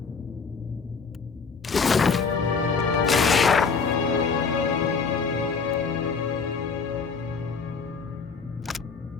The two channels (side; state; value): right; quieter; 5.2 dB